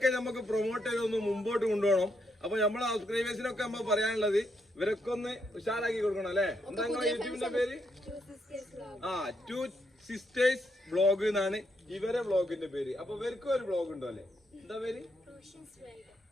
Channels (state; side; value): normal; both; correlation 0.78